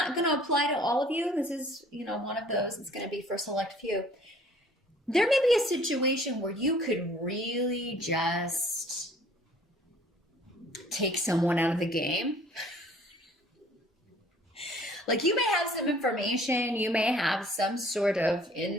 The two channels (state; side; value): normal; both; correlation 0.54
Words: going to apply to all of you. This is, one of those. It's going to be for a select few. There may be a situation where you could really just take someone out of the game. Like you may have some information, you may have some sort of